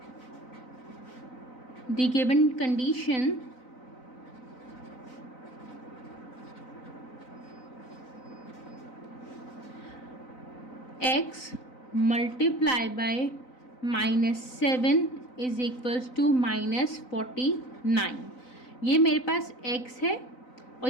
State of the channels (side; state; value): right; late; 4.0 ms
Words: the given condition x multiply by -7 is equals to -49। ये मेरे पास x है और